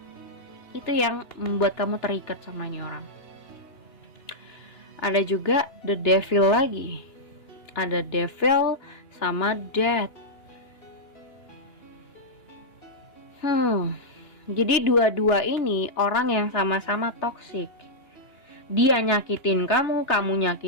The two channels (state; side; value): late; right; 2.9 ms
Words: Itu yang membuat kamu terikat sama ini orang. Ada juga The Devil lagi. Ada Devil sama Death. Jadi dua-dua ini orang yang sama-sama toksik. Dia nyakitin kamu, kamu